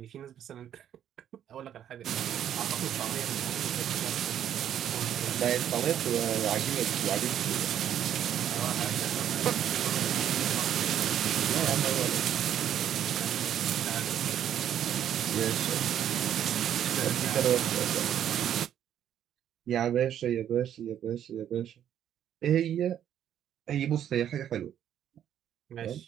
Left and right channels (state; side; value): quieter; left; 10.2 dB